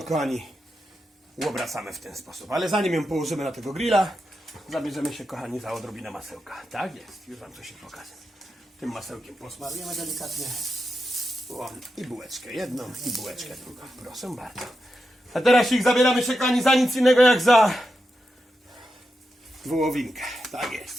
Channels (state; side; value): normal; both; correlation 0.88